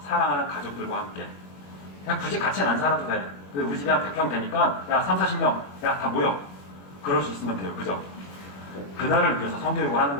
사랑하는 가족들과 함께. 그냥 굳이 같이는 안 살아도 돼. 우리 집에 한 100평 되니까 야 3, 40명 야 다 모여. 그럴 수 있으면 돼요. 그죠? 그날을 위해서 성교육을 하는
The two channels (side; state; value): right; late; 21 ms